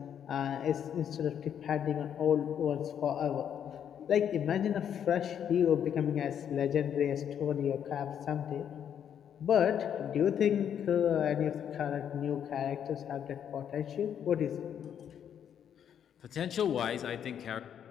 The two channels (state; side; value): quieter; right; 8.9 dB